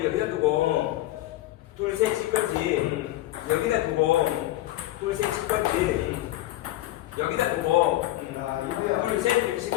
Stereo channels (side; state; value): right; quieter; 15.7 dB